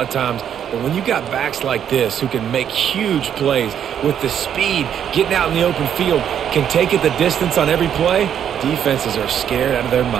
of times. But when you got backs like this who can make huge plays with the speed, getting out in the open field, can take it the distance on every play, defenses are scared out of their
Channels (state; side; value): quieter; left; 9.1 dB